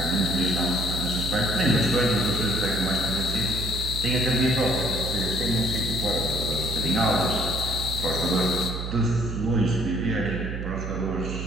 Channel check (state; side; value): noise; right; hum, 5 dB below the sound